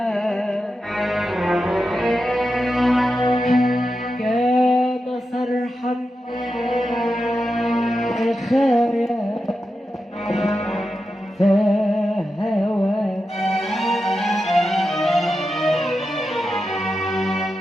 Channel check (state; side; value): normal; both; correlation 0.89